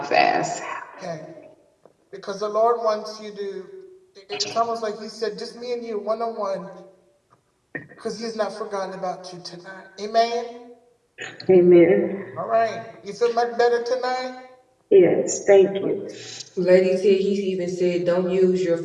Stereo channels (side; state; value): both; identical; correlation 1.00